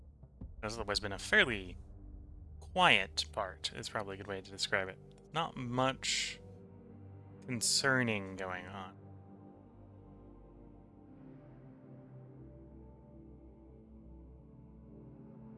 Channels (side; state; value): both; identical; correlation 1.00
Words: This has otherwise been a fairly quiet part, is probably a good way to describe it. Not much concerning going on.